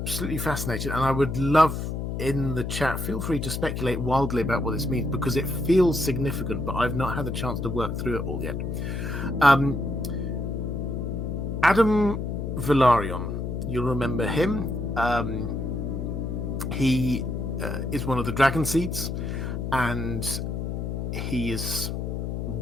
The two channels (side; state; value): left; noise; hum, 3 dB below the sound